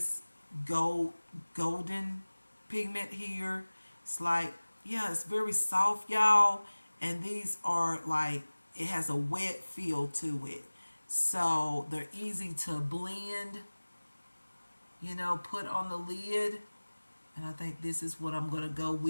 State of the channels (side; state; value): both; inverted; correlation -1.00